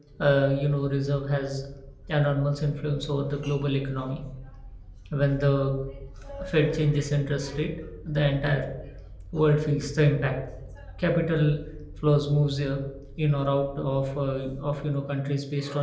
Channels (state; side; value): identical; both; correlation 1.00